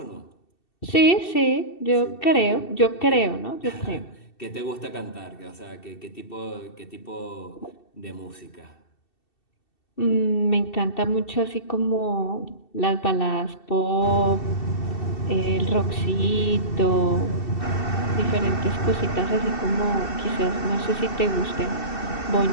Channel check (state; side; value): late; right; 2.7 ms